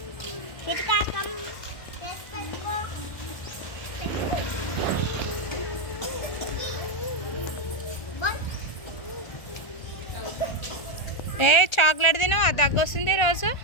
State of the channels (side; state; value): right; late; 1.4 ms